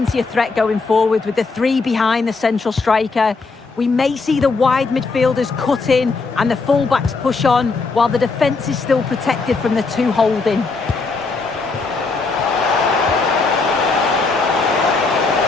of threat going forward with the three behind the central striker. We may see the wide midfielders cut in and the fullbacks push on while the defence is still protected from the two holding.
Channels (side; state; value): right; quieter; 4.1 dB